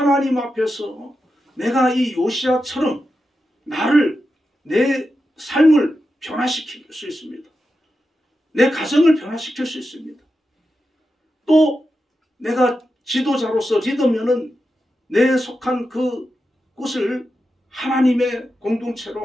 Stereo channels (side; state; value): both; normal; correlation 0.89